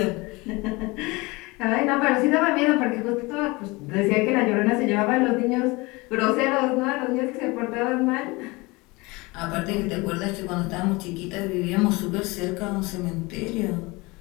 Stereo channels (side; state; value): right; quieter; 24.1 dB